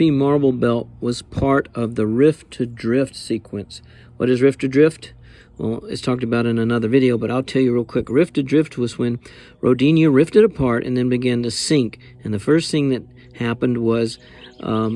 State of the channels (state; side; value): identical; both; correlation 1.00